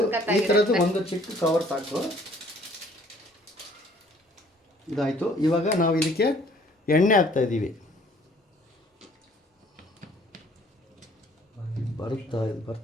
ಈ ಥರದ್ದು ಒಂದು ಚಿಕ್ಕ ಕವರ್ ಸಾಕು. ಇದಾಯಿತು. ಇವಾಗ ನಾವು ಇದಕ್ಕೆ ಎಣ್ಣೆ ಹಾಕ್ತಾ ಇದ್ದೀವಿ.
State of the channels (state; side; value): normal; both; correlation 0.58